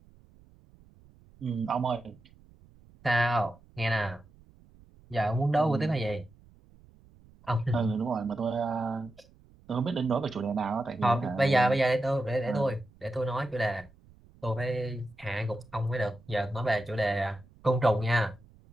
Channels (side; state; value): right; noise; rumble, 26 dB below the sound